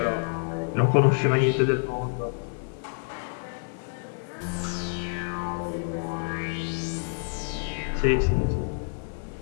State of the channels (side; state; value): right; silent; 60 dB below the other